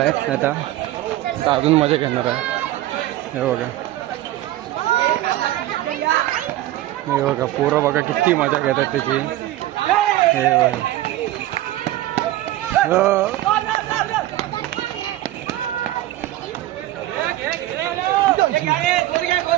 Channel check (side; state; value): left; quieter; 15.2 dB